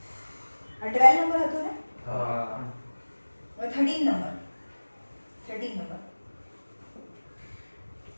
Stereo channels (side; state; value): both; inverted; correlation -1.00